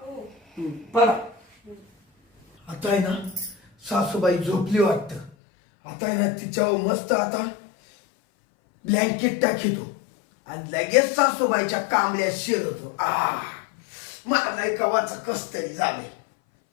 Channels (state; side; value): drops out; right; at 5.3 s